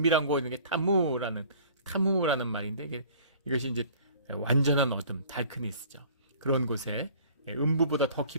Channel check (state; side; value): inverted; both; correlation -0.50